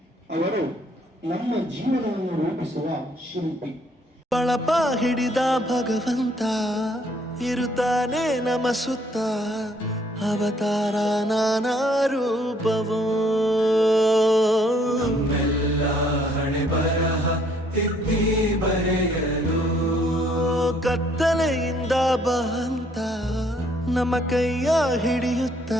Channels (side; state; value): both; normal; correlation 0.65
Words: ಅವರು ನಮ್ಮ ಜೀವನವನ್ನು ರೂಪಿಸುವ ಶಿಲ್ಪಿ. ಬಳಪ ಹಿಡಿದ ಭಗವಂತ ಇರುತ್ತಾನೆ ನಮ ಸುತ್ತ, ಅವತಾರ ನಾನಾ ರೂಪವೋ. ನಮ್ಮೆಲ್ಲ ಹಣೆ ಬರಹ ತಿದ್ದಿ ಬರೆಯಲು ಕತ್ತಲೆಯಿಂದ ಬಂತ ನಮ್ಮ ಕೈಯ ಹಿಡಿಯುತ್ತ,